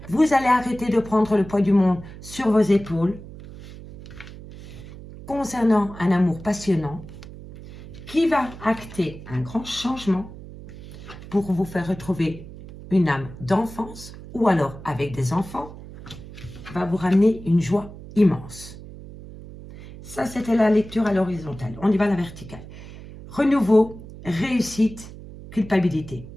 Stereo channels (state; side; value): noise; right; hum, 15 dB below the sound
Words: Vous allez arrêter de prendre le poids du monde sur vos épaules concernant un amour passionnant qui va acter un grand changement pour vous faire retrouver une âme d'enfance ou alors avec des enfants va vous ramener une joie immense. Ça, c'était la lecture à l'horizontale. On y va à la verticale. Renouveau, réussite, culpabilité.